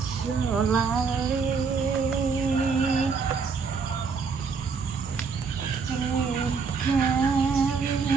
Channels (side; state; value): left; quieter; 5.2 dB